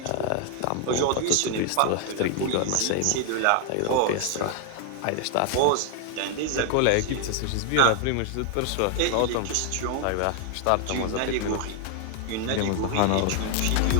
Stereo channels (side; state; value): both; different; correlation 0.00